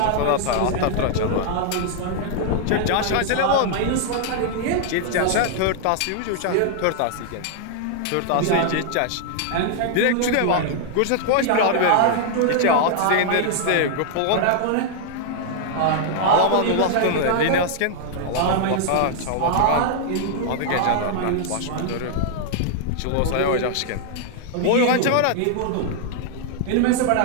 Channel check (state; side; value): different; both; correlation 0.00